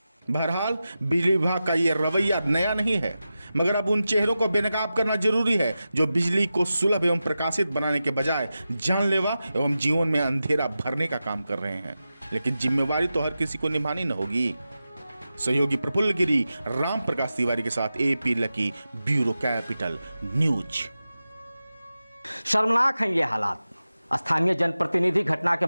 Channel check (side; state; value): both; inverted; correlation -0.93